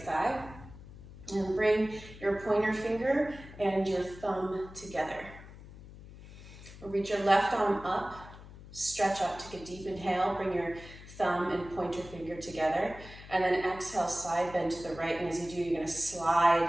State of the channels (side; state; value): left; noise; hum, 17 dB below the sound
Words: And bring your pointer finger and your thumb together. Reach your left arm up. Stretch up, take a deep inhale. Bring your thumb and pointer finger together. And then exhale, side bend to the right. And as you do, you're going to